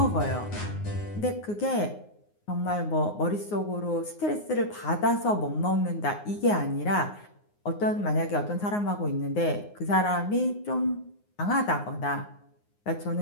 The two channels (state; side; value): late; right; 9.6 ms